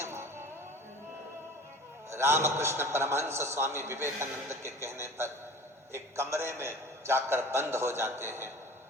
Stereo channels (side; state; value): both; normal; correlation 0.41